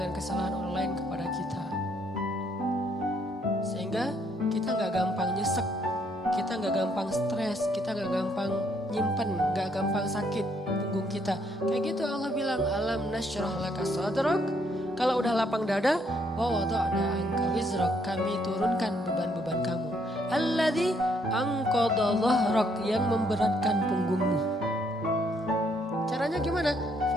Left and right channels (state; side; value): normal; both; correlation 0.70